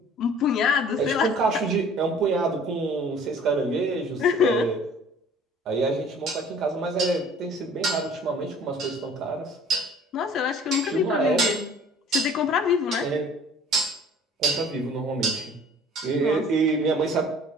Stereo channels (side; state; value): both; normal; correlation 0.50